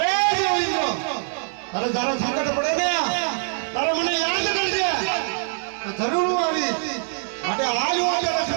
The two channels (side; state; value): left; silent; digital silence